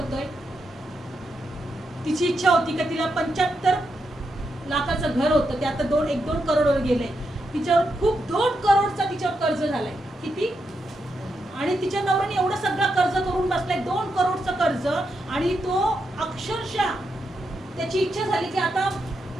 तिची इच्छा होती की तिला 75 लाखाचं घर होतं, ते आता 1-2 करोडवर गेलंय. तिच्यावर खूप 2 करोडचा तिच्यावर कर्ज झालाय. किती? आणि तिच्या नवऱ्याने एवढं सगळं कर्ज करून बसलाय, 2 करोडचं कर्ज. आणि तो अक्षरशः त्याची इच्छा झाली की आता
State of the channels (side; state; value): both; normal; correlation 0.84